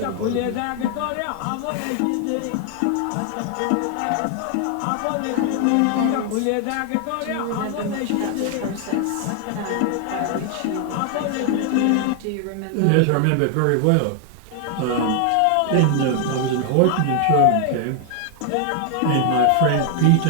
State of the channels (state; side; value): different; both; correlation 0.00